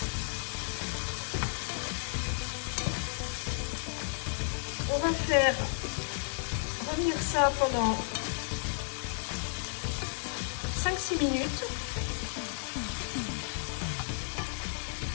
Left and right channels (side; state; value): right; silent; digital silence